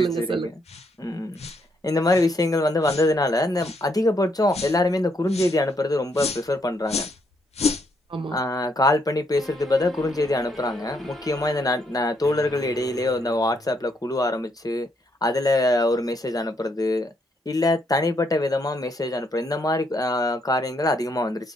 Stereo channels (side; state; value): both; normal; correlation 0.74